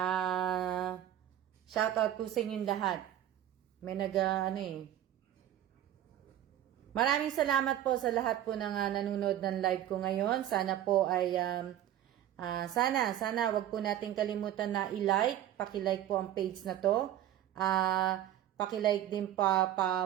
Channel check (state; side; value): quieter; left; 11.9 dB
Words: Shout out po sa inyong lahat. May Maraming salamat po sa lahat po ng nanonood ng live ko ngayon. Sana po ay sana wag po nating kalimutan na i-like, paki-like po ang page na to. Paki-like din